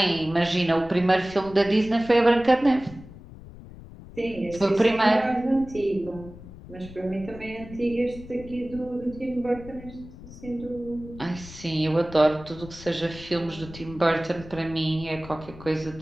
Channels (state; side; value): noise; left; rumble, 16 dB below the sound